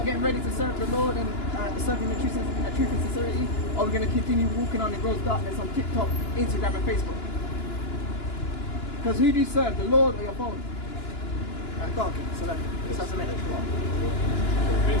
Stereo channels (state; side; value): late; right; 2.9 ms